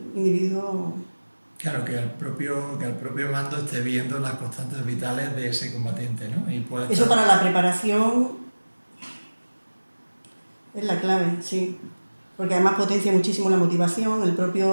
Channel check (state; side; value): inverted; both; correlation -1.00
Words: individuo... Claro, que el propio mando esté viendo las constantes vitales de ese combatiente, ¿no? Y puede Eso estar... para la preparación es la clave, sí. Porque además potencia muchísimo la motivación, el